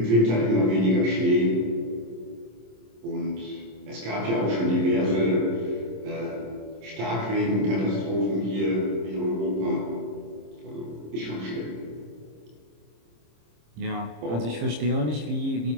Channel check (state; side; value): late; left; 26 ms